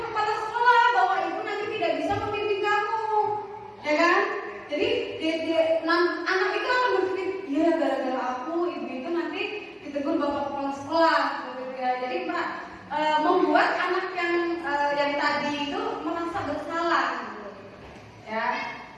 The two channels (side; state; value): both; identical; correlation 1.00